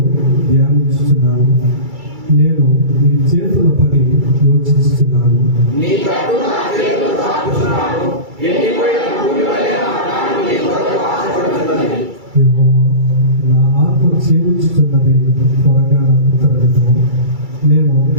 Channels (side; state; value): left; late; 2.3 ms